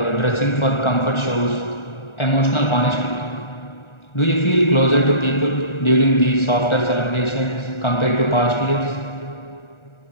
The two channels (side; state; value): right; late; 1.4 ms